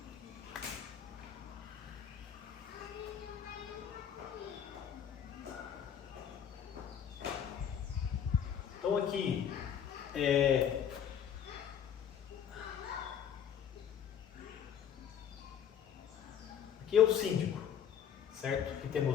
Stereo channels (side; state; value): right; quieter; 8.6 dB